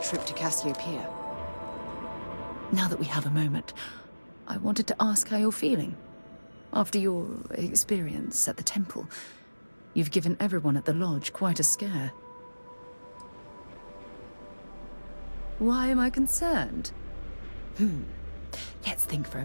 to Cassiopeia. Now that we have a moment, I wanted to ask how you're feeling. After your experience at the temple, you've given everyone at the lodge quite a scare. Why am I concerned? Let's think for a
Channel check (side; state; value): both; inverted; correlation -1.00